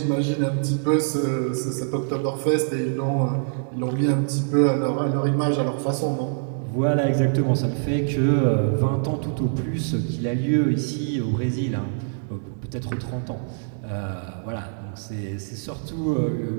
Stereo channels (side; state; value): left; silent; 62 dB below the other